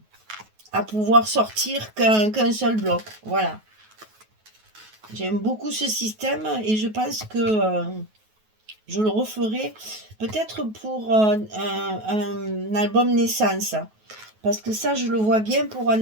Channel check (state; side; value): late; left; 9.3 ms